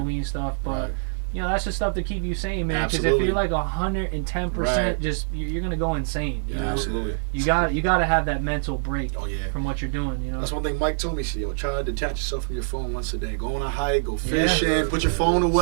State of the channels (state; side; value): silent; left; digital silence